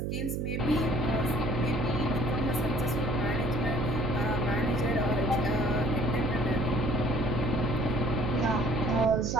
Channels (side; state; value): right; noise; hum, 1 dB below the sound